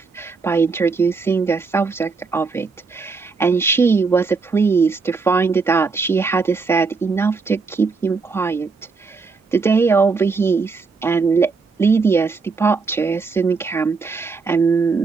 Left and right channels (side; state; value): left; quieter; 4.6 dB